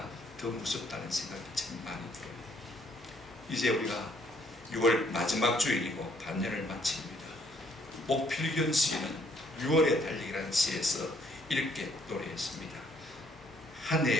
더 무섭다는 생각이 참 많이 들어요. 이제 우리가 6월 마지막 주일이고 반년을 마칩니다. 목필견 시인은 6월의 달리기라는 시에서 이렇게 노래했습니다. 한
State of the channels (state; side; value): normal; both; correlation 0.66